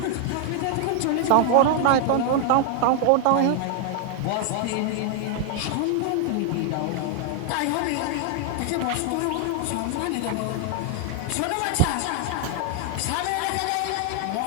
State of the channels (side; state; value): both; different; correlation 0.00